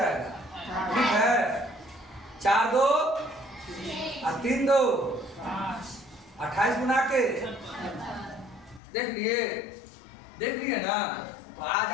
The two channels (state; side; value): drops out; right; at 8.8 s